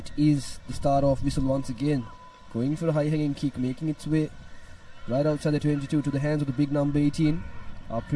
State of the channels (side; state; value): both; identical; correlation 1.00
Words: is the start of whistle once again. Going for a high hanging kick, making its way right outside the 22 to the hands of the big number 18, our